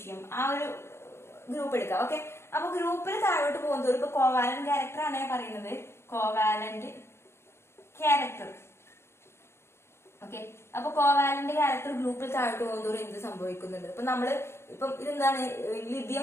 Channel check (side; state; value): right; late; 0.12 ms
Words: ആ ഒരു ഗ്രൂപ്പ് എടുക്കാം. ഓക്കെ, അപ്പൊ ഗ്രൂപ്പിൽ താഴോട്ട് പോകുന്നതോറും ഇപ്പൊ കോവാലന്റ് ക്യാരക്ടർ ആണ് ഞാൻ പറയുന്നത്, കോവാലന്റ് ക്യാരക്ടർ. ഓക്കെ, അപ്പൊ കോവാലന്റ് ക്യാരക്ടർ ഗ്രൂപ്പിൽ താഴോട്ട് പോകുന്നതോറും എന്ത് സംഭവിക്കുന്നുണ്ട്? ഇപ്പൊ നമ്മള് ഇപ്പം ഇതെന്താണ്, ലിഥിയം